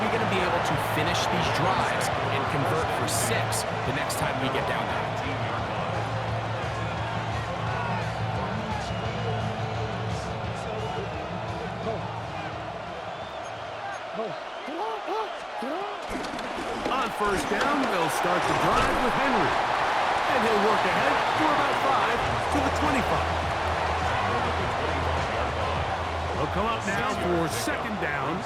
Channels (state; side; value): identical; both; correlation 1.00